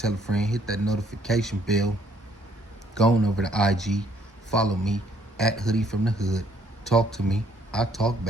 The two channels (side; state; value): both; normal; correlation 0.65